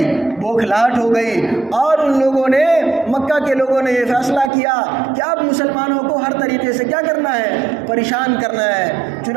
بوکھلاہٹ ہو گئی۔ اور ان لوگوں نے، مکہ کے لوگوں نے یہ فیصلہ کیا کہ اب مسلمانوں کو ہر طریقے سے کیا کرنا ہے، پریشان کرنا ہے۔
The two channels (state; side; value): drops out; left; at 4.5 s